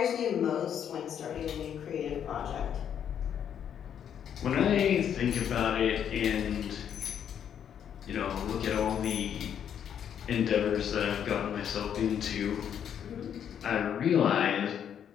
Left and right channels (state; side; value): quieter; right; 8.9 dB